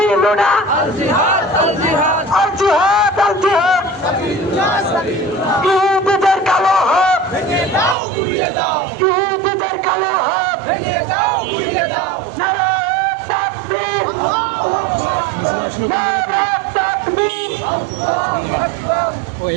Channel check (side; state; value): left; drops out; at 8.0 s